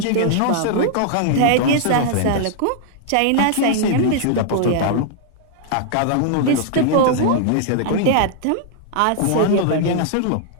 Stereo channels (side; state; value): both; different; correlation -0.01